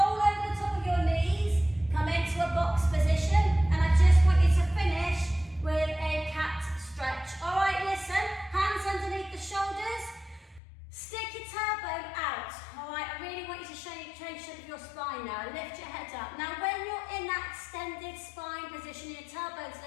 over the top of your knees. Come into a box position. And I just want you to finish with a cat stretch. All right, listen. Hands underneath the shoulders. Stick your tailbone out. All right, I really want you to change the shape of your spine now. Lift your head up. Now, when you're in that extended spine position, your tailbone's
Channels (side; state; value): right; drops out; at 10.6 s